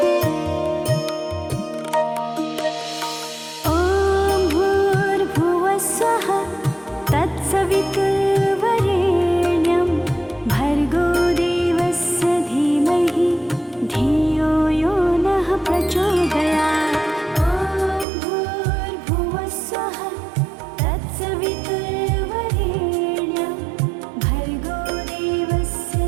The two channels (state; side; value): drops out; left; at 18.1 s